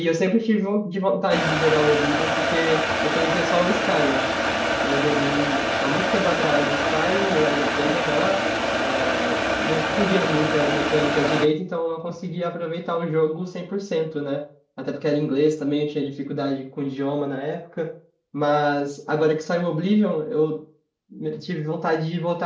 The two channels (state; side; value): identical; both; correlation 1.00